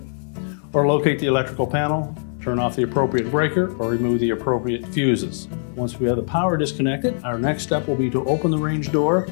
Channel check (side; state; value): right; silent; 64 dB below the other